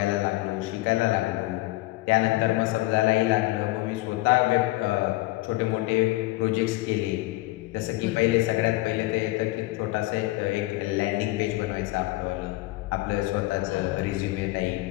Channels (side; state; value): right; quieter; 19.6 dB